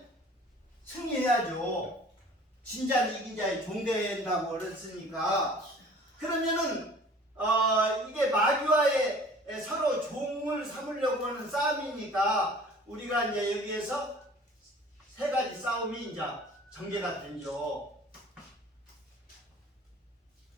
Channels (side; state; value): both; normal; correlation 0.48